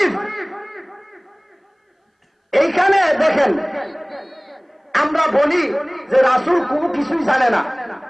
এইখানে দেখেন আমরা বলি যে রাসূল কোনো কিছুই জানে না,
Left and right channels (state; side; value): identical; both; correlation 1.00